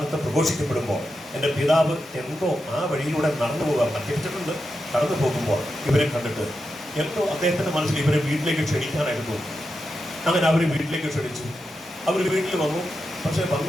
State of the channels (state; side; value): normal; both; correlation 0.88